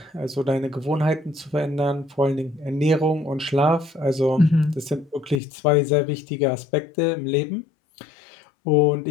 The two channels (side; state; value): right; drops out; at 5.4 s